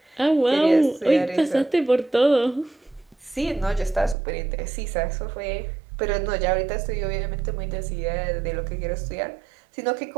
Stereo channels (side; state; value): left; drops out; at 4.2 s